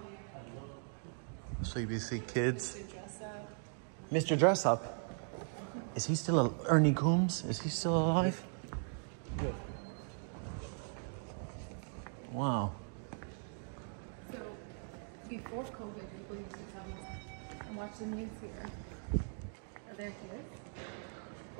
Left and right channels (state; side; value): silent; left; 52 dB below the other